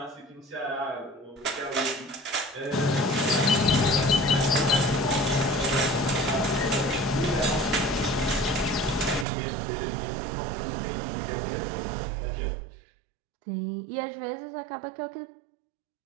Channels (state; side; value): drops out; left; at 9.2 s